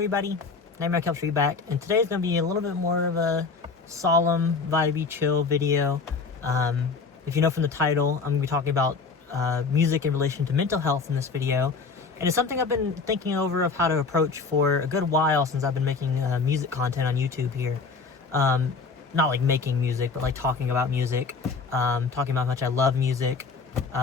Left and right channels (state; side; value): quieter; right; 4.6 dB